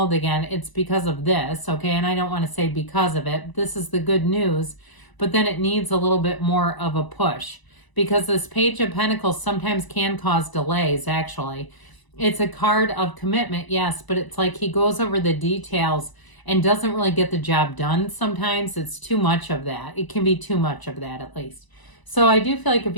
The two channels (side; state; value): right; late; 1.0 ms